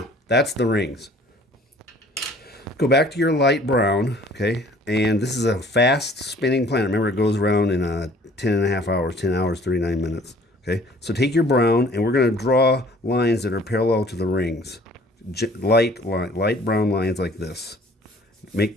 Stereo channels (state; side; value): normal; both; correlation 0.54